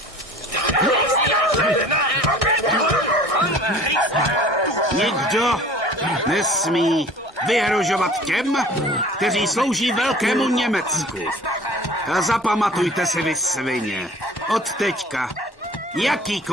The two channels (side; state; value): both; normal; correlation 0.46